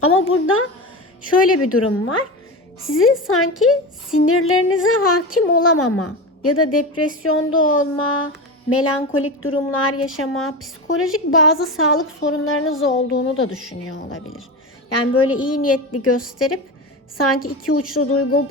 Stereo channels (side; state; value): both; normal; correlation 0.23